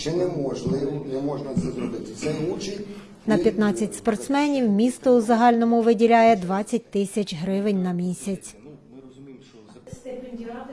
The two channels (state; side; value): identical; both; correlation 1.00